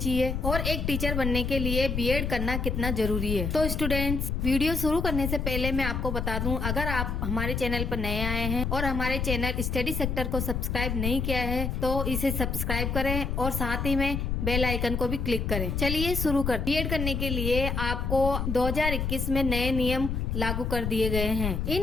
और एक टीचर बनने के लिए बीएड करना कितना जरूरी है। तो स्टूडेंट्स, वीडियो शुरू करने से पहले मैं आपको बता दूं, अगर आप हमारे चैनल पर नए आए हैं और हमारे चैनल स्टडी सेक्टर को सब्सक्राइब नहीं किया है तो इसे सब्सक्राइब करें और साथ ही में बेल आइकन को भी क्लिक करें। चलिए शुरू कर। बीएड करने के लिए आपको 2021 में नए नियम लागू कर दिए गए हैं।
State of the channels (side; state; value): left; noise; rumble, 1 dB below the sound